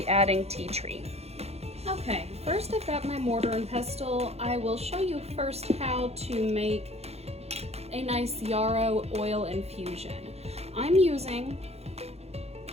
adding tea tree. Okay, first I've got my mortar and pestle. I will show you first how to make a nice yarrow oil infusion. I'm using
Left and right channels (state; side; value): late; left; 0.30 ms